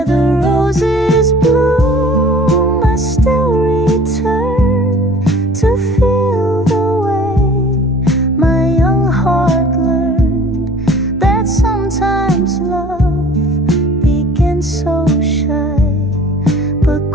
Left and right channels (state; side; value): normal; both; correlation 0.49